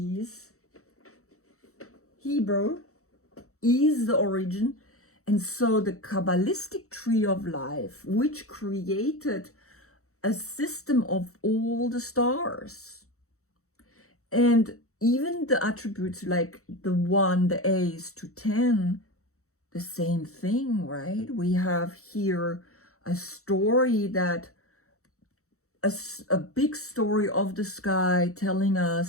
Hebrew, is the origin. And so the Kabbalistic tree of life, which created a system of all the stars, and even the attributes like the 1, the A's to 10, the same thing, right? We have here a story that, a big story of the sky telling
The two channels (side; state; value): right; late; 0.64 ms